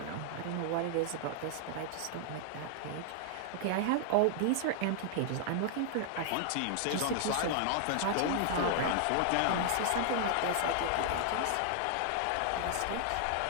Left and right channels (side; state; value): both; different; correlation -0.01